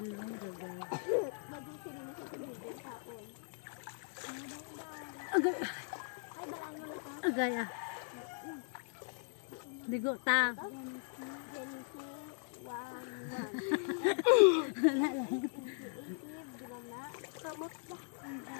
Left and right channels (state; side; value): silent; right; 52 dB below the other